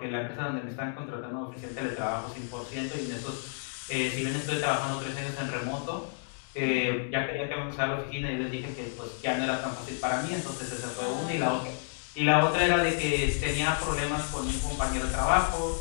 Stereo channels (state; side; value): silent; right; digital silence